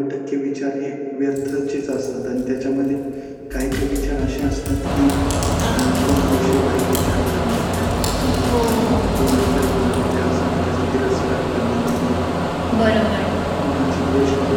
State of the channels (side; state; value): both; identical; correlation 1.00